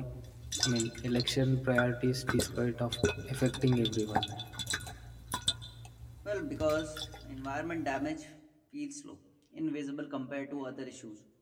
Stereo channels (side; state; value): both; identical; correlation 1.00